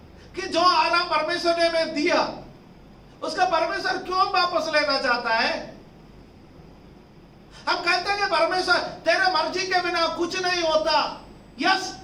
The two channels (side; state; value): both; identical; correlation 1.00